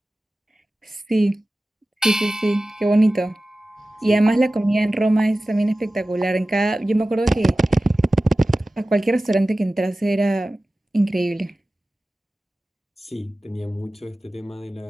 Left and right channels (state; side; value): normal; both; correlation 0.96